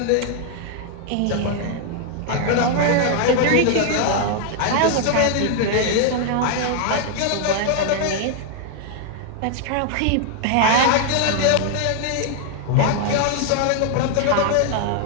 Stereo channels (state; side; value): different; both; correlation 0.00